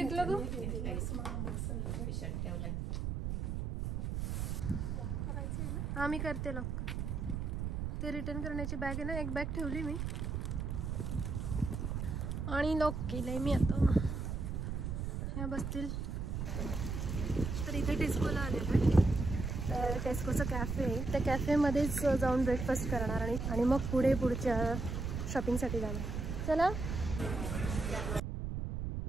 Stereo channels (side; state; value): right; noise; rumble, 3 dB below the sound